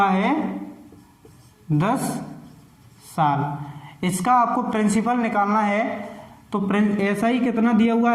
है 10 साल। इसका आपको प्रिंसिपल निकालना है। तो SI कितना दिया हुआ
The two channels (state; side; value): identical; both; correlation 1.00